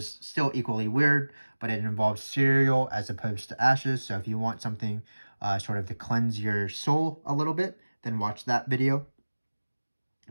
still equally weird, but it involves cereal as opposed to ashes. So if you want something sort of to cleanse your soul a little bit, then watch that video.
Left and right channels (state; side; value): inverted; both; correlation -1.00